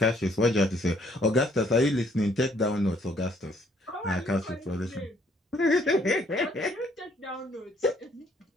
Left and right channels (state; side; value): normal; both; correlation 0.65